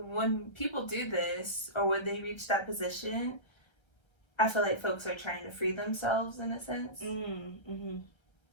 people do this, or when they reach that position, I feel like folks are trying to free themselves in a sense.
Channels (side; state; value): right; late; 1.3 ms